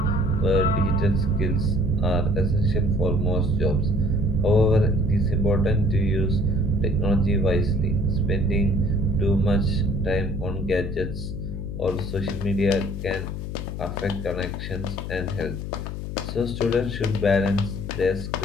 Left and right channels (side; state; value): left; noise; hum, 6 dB below the sound